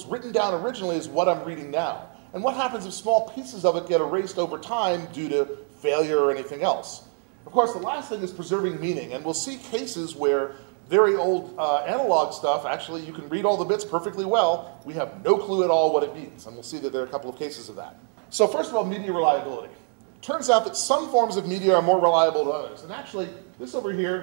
written down originally is what I'm reading now? And what happens if small pieces of it get erased over time due to failure or anything else? Of course, the last thing is preserving meaning, and we'll see cases where very old analog stuff, actually you can read all the bits perfectly well, we have no clue at all what it means, and we'll see that there are a couple of cases of that. So first of all, media reliability. It turns out that some forms of media are more reliable than others, and actually, this over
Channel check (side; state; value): left; quieter; 39.1 dB